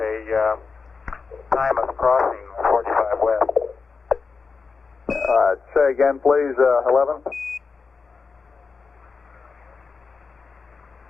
time of crossing 45 west. Say again, please, 11.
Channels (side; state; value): right; quieter; 4.8 dB